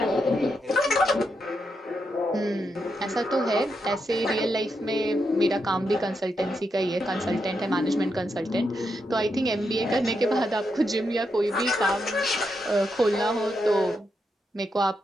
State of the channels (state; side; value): normal; both; correlation 0.83